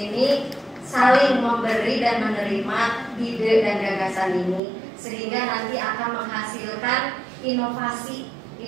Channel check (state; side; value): drops out; left; at 4.6 s